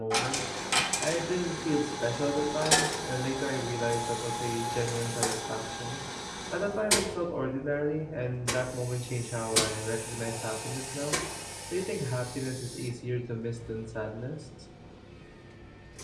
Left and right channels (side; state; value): both; identical; correlation 1.00